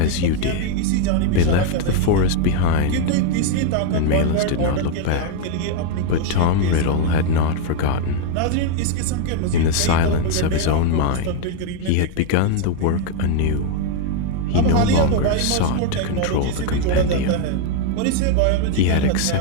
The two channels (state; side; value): different; both; correlation 0.01